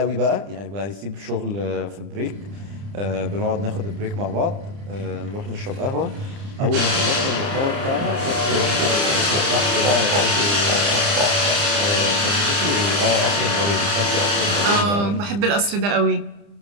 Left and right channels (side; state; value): left; late; 30 ms